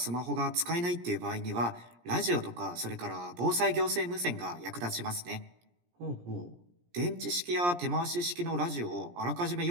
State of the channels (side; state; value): left; late; 17 ms